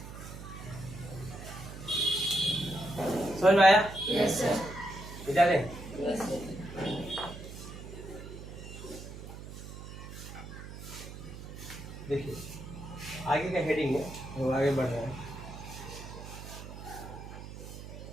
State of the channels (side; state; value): right; noise; hum, 12 dB below the sound